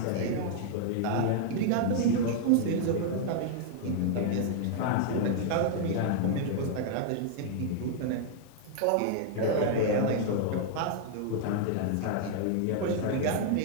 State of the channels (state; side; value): different; both; correlation -0.01